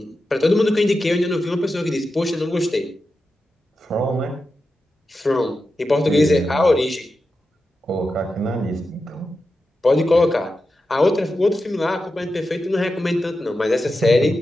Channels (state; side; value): normal; both; correlation 0.90